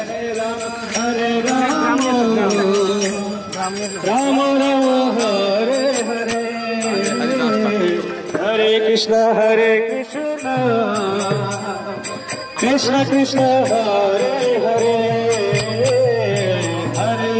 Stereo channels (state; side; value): identical; both; correlation 1.00